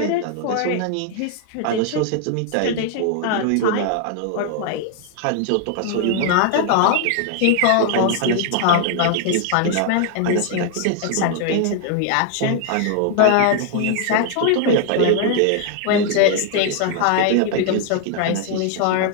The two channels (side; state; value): both; different; correlation 0.00